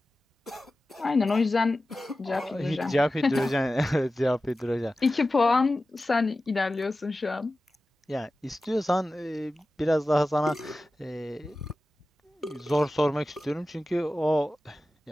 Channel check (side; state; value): both; normal; correlation 0.95